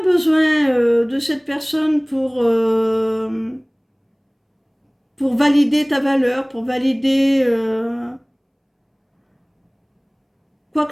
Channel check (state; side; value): identical; both; correlation 1.00